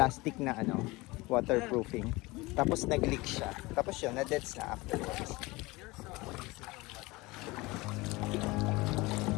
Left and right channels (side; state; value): right; quieter; 22.3 dB